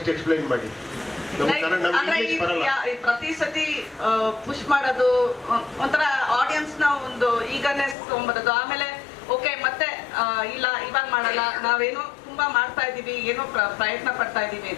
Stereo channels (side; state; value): right; drops out; at 8.0 s